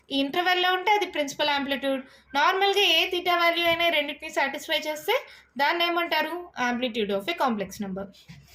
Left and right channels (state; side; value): identical; both; correlation 1.00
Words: ఈ ఇంటర్వెల్లో ఉంటే అది ప్రిన్సిపల్ ఆంప్లిట్యూడ్. నార్మల్గా ఏ థీటా వాల్యూ అయినా రెండింటిని సాటిస్ఫై చేస్తే దాన్ని ఏమంటారు? Amplitude of a complex number.